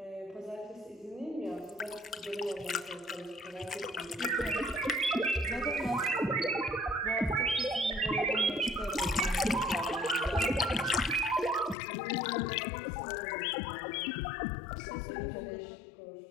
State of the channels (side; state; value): right; drops out; at 11.8 s